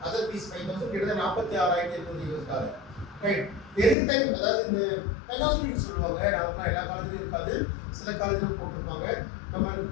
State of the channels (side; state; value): right; drops out; at 4.0 s